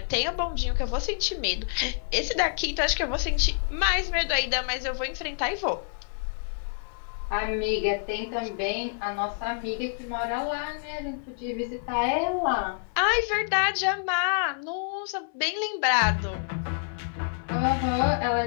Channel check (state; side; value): silent; right; digital silence